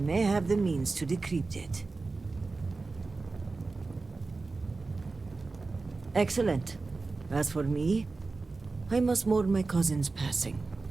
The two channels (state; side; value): quieter; left; 3.8 dB